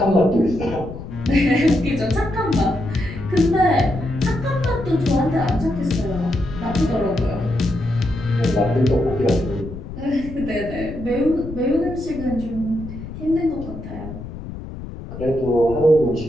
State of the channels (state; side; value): noise; left; rumble, 11 dB below the sound